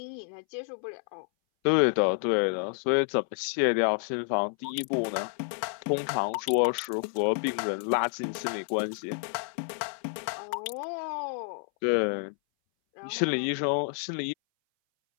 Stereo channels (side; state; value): right; silent; 58 dB below the other